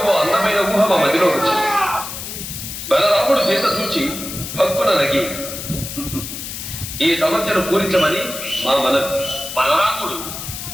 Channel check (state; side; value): noise; left; hiss, 8 dB below the sound